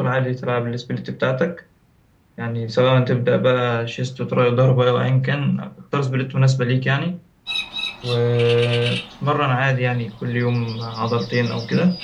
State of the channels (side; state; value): both; identical; correlation 1.00